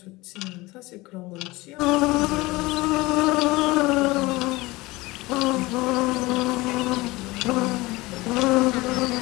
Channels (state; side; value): quieter; right; 21.3 dB